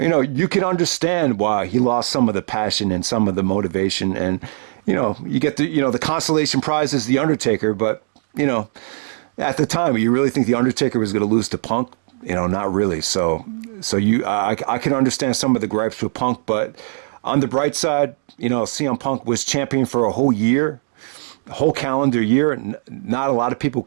can understand why he lost some of the passion and some of the motivation, and you get the consolation prize is the Undertaker, but at the time you really think the Undertaker was going to lose to Punk? Not really. So I can understand some of the gripes with Punk, but on the bright side, CM Punk was champion for a whole year. Whole calendar year. Not a lot of people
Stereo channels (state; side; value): silent; left; digital silence